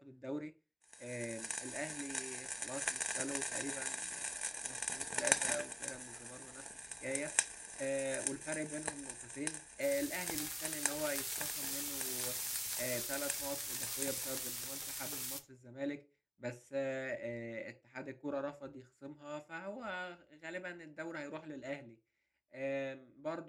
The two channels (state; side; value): identical; both; correlation 1.00